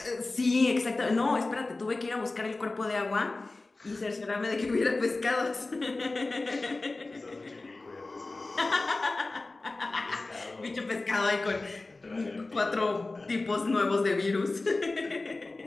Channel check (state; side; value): quieter; right; 3.3 dB